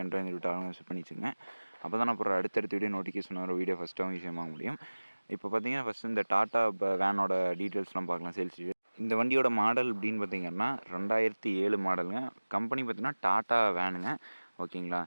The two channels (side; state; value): both; inverted; correlation -1.00